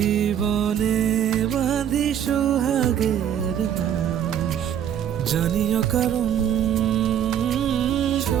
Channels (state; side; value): quieter; left; 9.5 dB